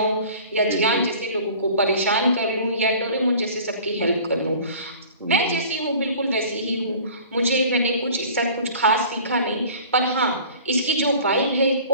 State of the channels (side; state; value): both; inverted; correlation -0.45